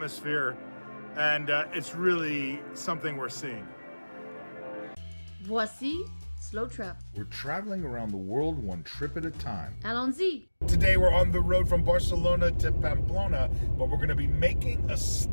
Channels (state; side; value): inverted; both; correlation -1.00